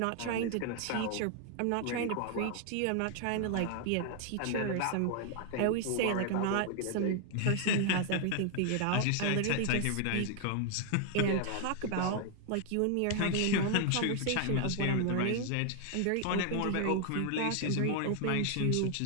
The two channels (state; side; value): different; both; correlation 0.00